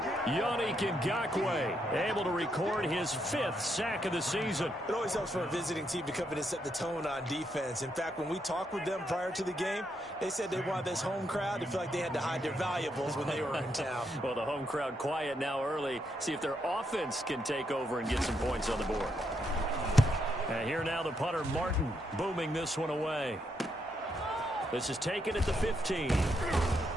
Yannick Ngakoue able to record his 5th sack of the season. It always helps for a visiting team to come in and set the tone on defense. In fact, when we talked with them prior to the game, they said they wanted this home crowd to feel like they had to hide their valuables when they were in town. Well, the home crowd quiet now early. See if their offense can take over and get some points on the board. And here now the punter, Martin, booming this one away. This is taken at the 15.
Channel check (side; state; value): both; normal; correlation 0.78